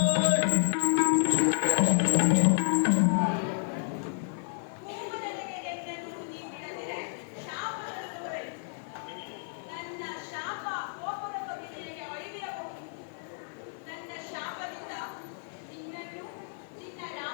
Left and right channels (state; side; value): silent; right; 57 dB below the other